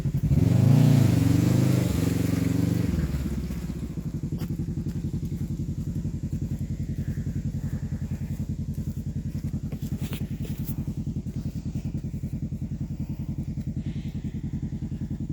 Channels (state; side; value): identical; both; correlation 1.00